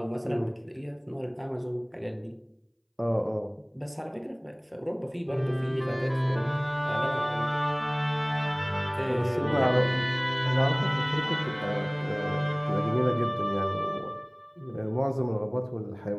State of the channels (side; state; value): both; identical; correlation 1.00